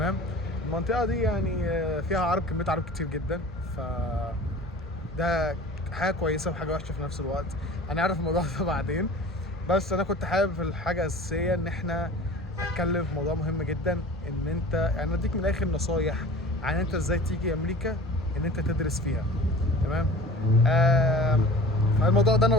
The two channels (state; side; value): normal; both; correlation 0.41